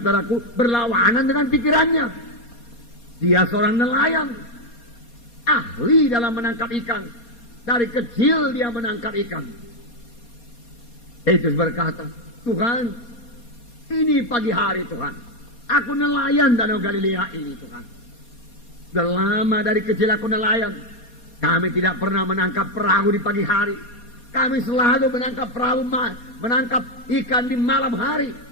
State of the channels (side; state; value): right; late; 4.2 ms